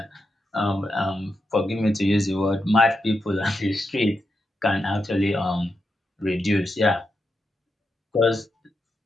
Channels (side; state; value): both; normal; correlation 0.86